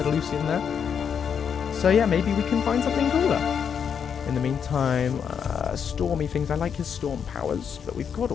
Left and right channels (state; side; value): quieter; right; 7.4 dB